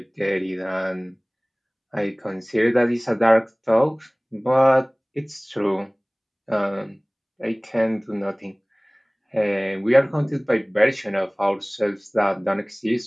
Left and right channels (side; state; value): both; identical; correlation 1.00